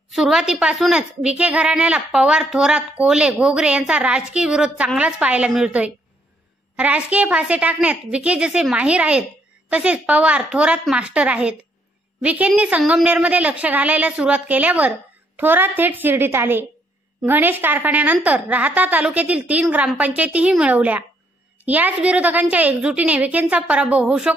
सुरुवातीपासूनच विखे घराण्याला पवार, थोरात, कोले, घोगरे यांचा राजकीय विरोध चांगलाच पाहायला मिळतोय। राजकीय फासे टाकण्यात विखे जसे माहीर आहेत तसेच पवार, थोरात मास्टर आहेत। विखेंनी संगमनेरमध्ये लक्ष घालायला सुरुवात केल्यावर थोरात थेट शिर्डीत आले। गणेश कारखान्यानंतर राहता तालुक्यातील 3 ग्रामपंचायतीही मिळवल्या। याच विरोधकांच्या एकजुटीने विखेंचा पराभव होऊ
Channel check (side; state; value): both; normal; correlation 0.71